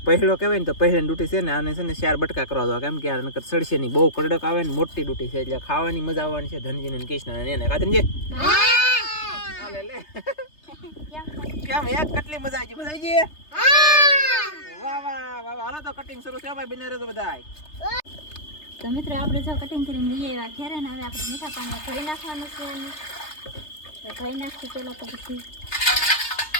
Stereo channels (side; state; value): right; late; 3.3 ms